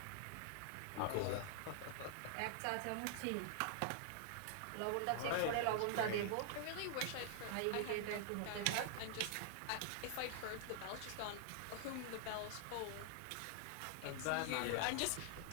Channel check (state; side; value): different; both; correlation -0.01